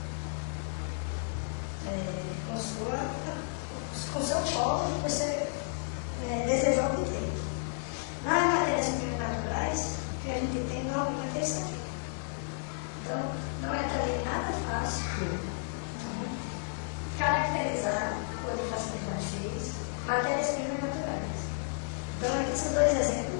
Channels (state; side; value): silent; right; 56 dB below the other